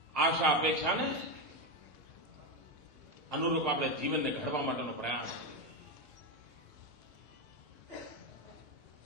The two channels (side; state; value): both; normal; correlation 0.10